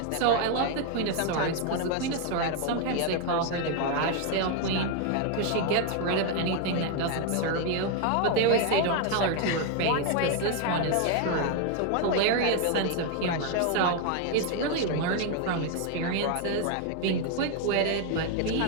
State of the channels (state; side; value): different; both; correlation 0.00